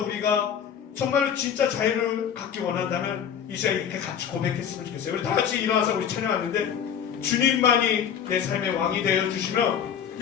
우리가 정말로 진짜 자유를 갖기 원한다면 이 시간에 이렇게 같이 고백했으면 좋겠어요. 우리 다 같이 일어나서 우리 찬양하는데, 주님만이 내 삶의 왕이 되어 주시면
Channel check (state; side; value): quieter; right; 8.4 dB